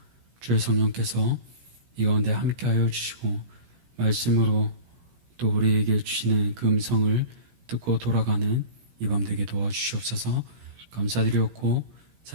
주의 성령께서 이 가운데 함께하여 주시고 말씀으로 또 우리에게 주시는 그 음성을 듣고 돌아가는 이 밤 되게 도와주시옵소서. 감사드리옵고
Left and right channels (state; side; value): late; left; 17 ms